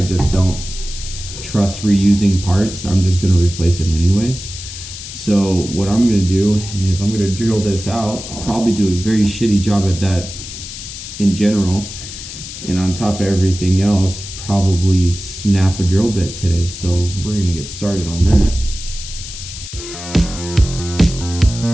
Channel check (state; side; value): noise; left; hiss, 11 dB below the sound